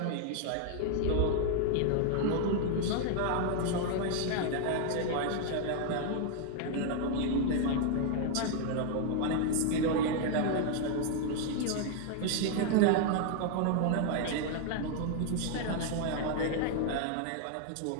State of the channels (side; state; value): both; different; correlation 0.00